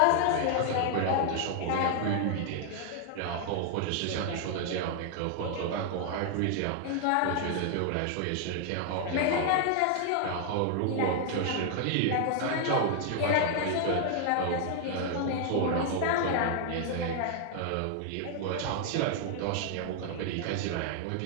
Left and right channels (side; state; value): both; different; correlation 0.00